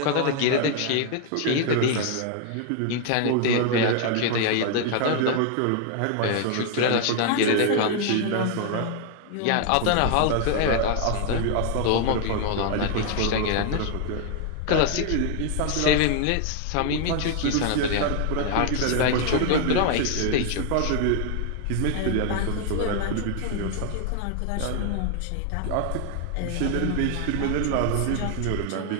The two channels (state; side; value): different; both; correlation 0.00